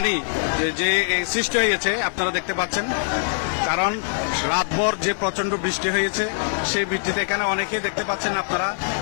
যে সৃষ্টি হয়েছে আপনারা দেখতে পাচ্ছেন। কারণ রাতভর যে প্রচন্ড বৃষ্টি হয়েছে, সেই বৃষ্টিতে এখানে অনেকেই দেখতে পাচ্ছেন আপনারা,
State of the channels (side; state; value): right; silent; digital silence